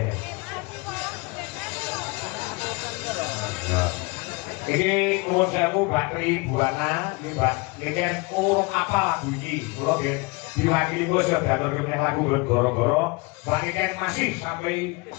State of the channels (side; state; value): right; quieter; 26.9 dB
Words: Iki nuwun sewu Mbak Tribuana, iki kan urung apa lagu iki. Kula nggih diwakili kula siap diaturke meneh lagu goro-goro. Mbak Iken masih sampai